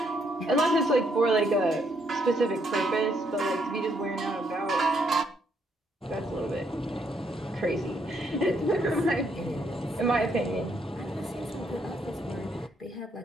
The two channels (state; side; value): normal; both; correlation 0.73